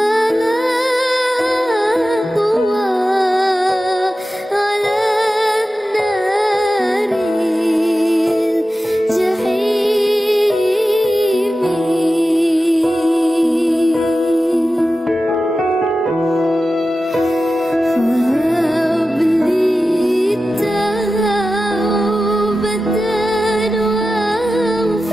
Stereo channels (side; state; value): both; normal; correlation 0.93